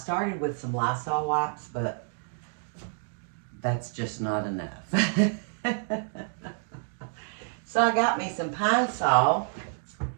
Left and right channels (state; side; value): silent; left; 59 dB below the other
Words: with some Lysol wipes, but that's just not enough. So I got me some Pine Sol